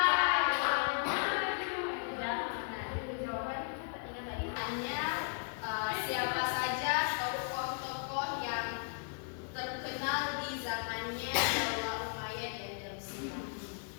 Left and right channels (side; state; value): right; silent; 54 dB below the other